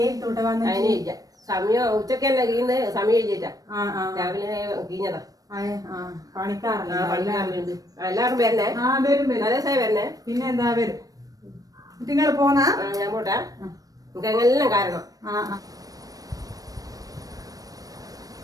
അതിനില്ല സമയം. ഉച്ചക്ക് തന്നെ കീന്ന് സമയം കഴിഞ്ഞിട്ടാ. രാവിലെ കീഞ്ഞതാ. പണിക്കാറുണ്ട്. എല്ലാവരും വരണേ. അതേ വരണേ. പിന്നെ എന്താ വരും. നിങ്ങൾ പോന്നാ ഞാൻ പോട്ടെ. നമുക്ക് എങ്ങനെല്ലാം കാരണം.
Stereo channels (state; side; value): late; left; 0.18 ms